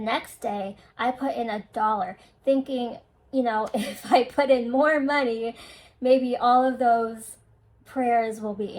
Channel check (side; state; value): both; identical; correlation 1.00